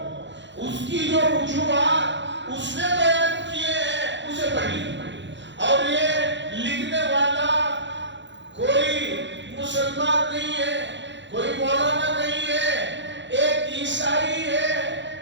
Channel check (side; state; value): left; late; 0.53 ms